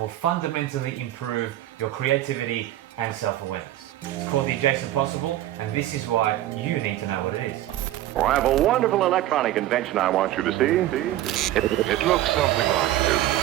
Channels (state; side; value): quieter; left; 14.1 dB